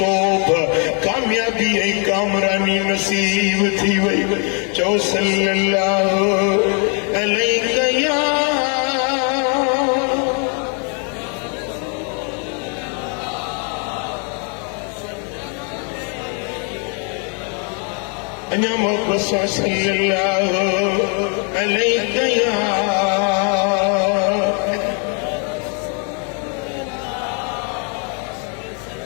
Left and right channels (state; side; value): quieter; right; 39.2 dB